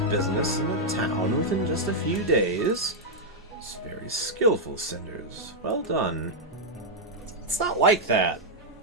in the town within just a few days? It's very skillful, Cinders. Well done. It's not like that.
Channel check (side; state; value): both; normal; correlation -0.03